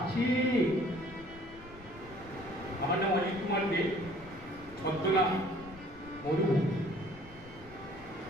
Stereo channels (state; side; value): noise; left; rumble, 20 dB below the sound